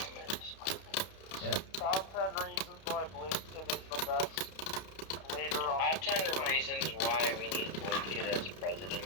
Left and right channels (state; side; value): late; right; 31 ms